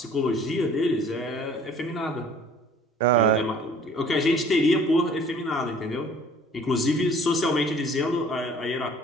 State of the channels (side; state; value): both; normal; correlation 0.52